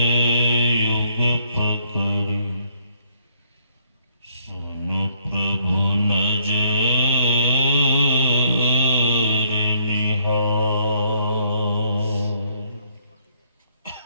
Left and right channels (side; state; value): both; inverted; correlation -0.67